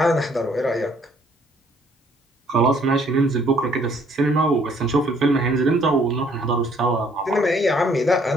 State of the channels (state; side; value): normal; both; correlation 0.63